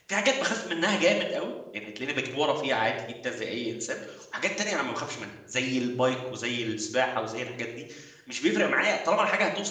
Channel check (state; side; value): identical; both; correlation 1.00